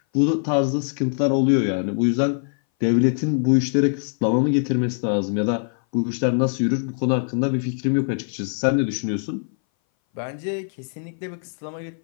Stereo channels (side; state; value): right; silent; 60 dB below the other